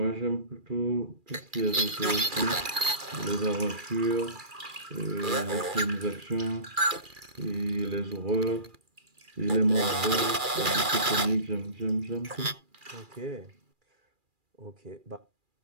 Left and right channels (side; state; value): left; late; 2.4 ms